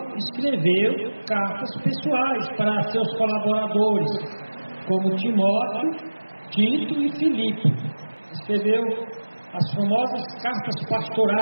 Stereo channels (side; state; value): both; inverted; correlation -1.00